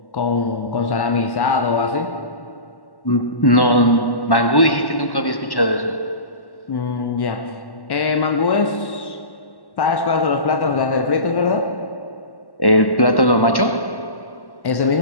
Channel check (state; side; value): late; right; 1.1 ms